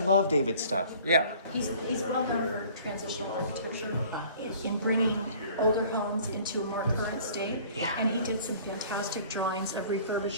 David's stuff, yeah. He's well known for transitional architecture in bringing older homes into a more current state. Yeah. And he did some fantastic drawings of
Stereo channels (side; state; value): both; inverted; correlation -0.50